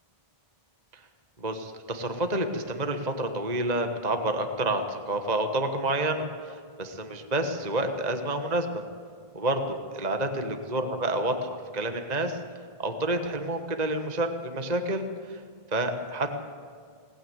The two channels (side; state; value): left; late; 1.9 ms